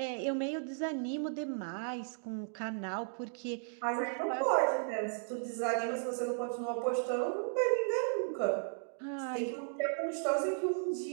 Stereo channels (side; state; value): left; silent; digital silence